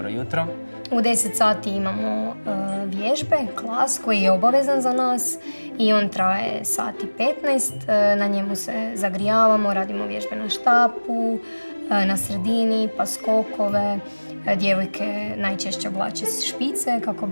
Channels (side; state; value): both; inverted; correlation -1.00